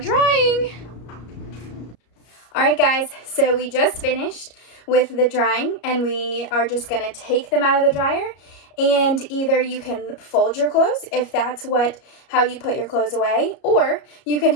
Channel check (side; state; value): right; late; 33 ms